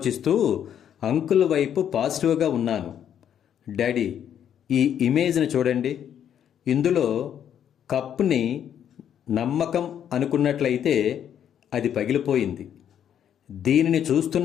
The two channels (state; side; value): quieter; right; 9.4 dB